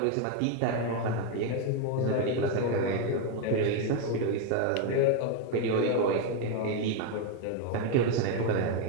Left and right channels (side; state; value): both; different; correlation 0.02